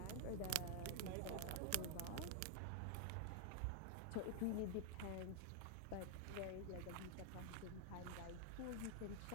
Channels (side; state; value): both; different; correlation 0.00